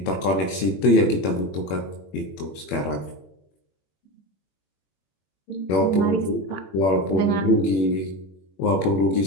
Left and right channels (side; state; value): right; late; 21 ms